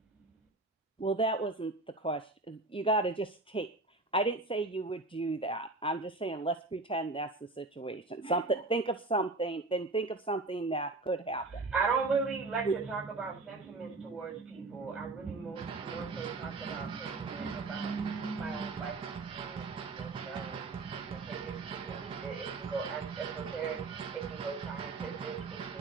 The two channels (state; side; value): quieter; left; 3.3 dB